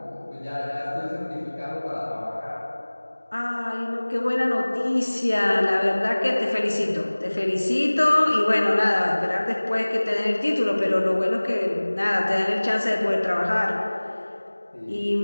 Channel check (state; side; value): inverted; both; correlation -1.00